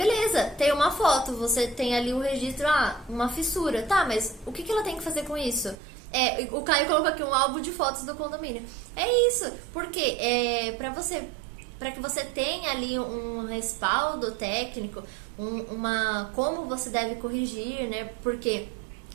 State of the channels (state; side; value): drops out; left; at 5.8 s